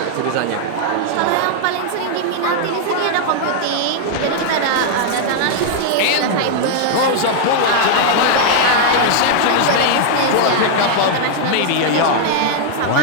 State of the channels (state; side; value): different; both; correlation -0.01